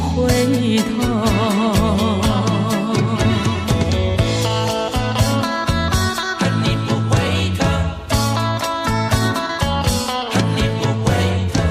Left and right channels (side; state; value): both; identical; correlation 1.00